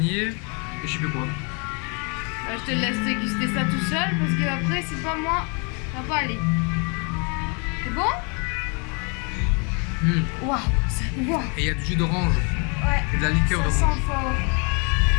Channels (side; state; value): right; quieter; 34.7 dB